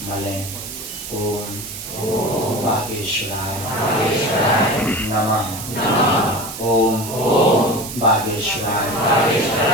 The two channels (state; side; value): noise; right; hiss, 9 dB below the sound